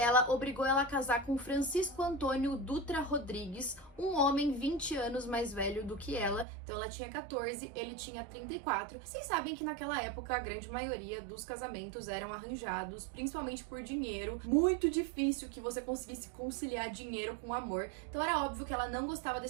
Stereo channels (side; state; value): left; drops out; at 6.5 s